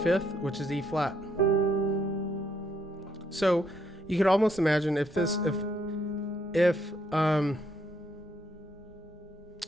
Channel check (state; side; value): normal; both; correlation 0.72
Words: which is E flat. So you could almost imagine if this